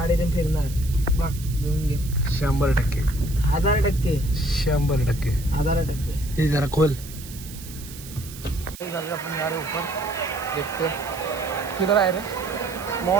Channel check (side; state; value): right; noise; hiss, 15 dB below the sound